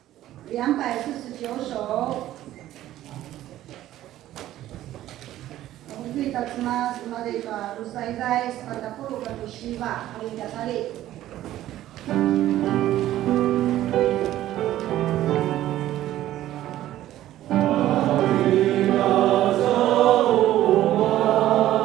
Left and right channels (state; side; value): quieter; left; 13.7 dB